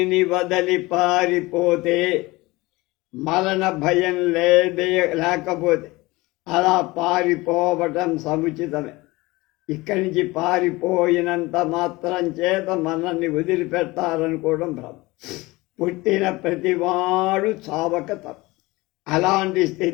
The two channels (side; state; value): right; quieter; 21.6 dB